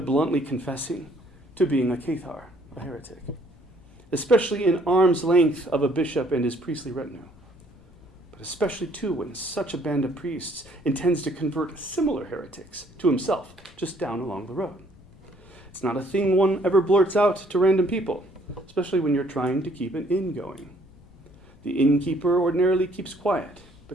bluntly confessing to being a cathar, a heretic, especially in arm's length of a bishop and his priestly retinue. But especially, too, when such a band of priests intends to convert similar heretics to himself just down along the road. It's not a thing one ever blurts out to random people, especially when you're trying to keep an inn going. The innkeeper ordinarily keeps quiet,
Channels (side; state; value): left; noise; rumble, 26 dB below the sound